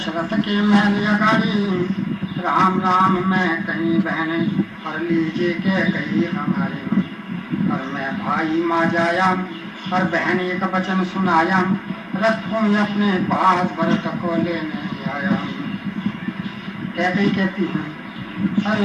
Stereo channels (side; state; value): both; identical; correlation 1.00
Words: के महल अगाड़ी, राम राम मैं कहीं बहन, और लीजिए के कही हमारे। और मैं भाई माँ जाया, और बहन एक वचन सुनाया, रथ हूँ अपने पास भरत को लेने आया। कहती हूँ